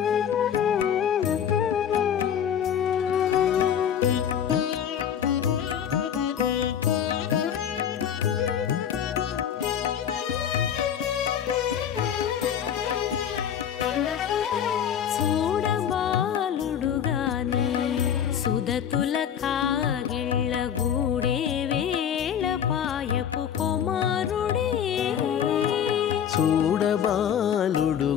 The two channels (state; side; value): quieter; right; 8.9 dB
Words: సుదతుల కాగిళ్ళ గూడే వేళ పాయపు కుమారుడే చూడబాలుడు